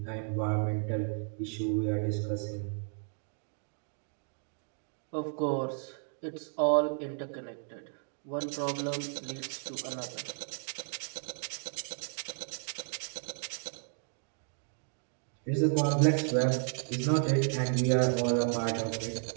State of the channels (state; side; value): silent; left; 55 dB below the other